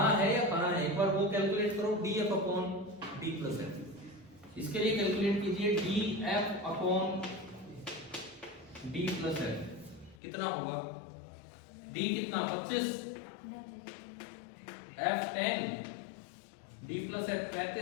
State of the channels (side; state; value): right; drops out; at 10.2 s